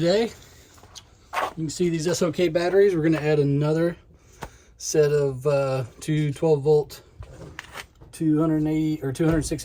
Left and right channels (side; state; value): both; identical; correlation 1.00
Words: You can see these SOK batteries. We're going to add another set of two 12 volt 280 or 206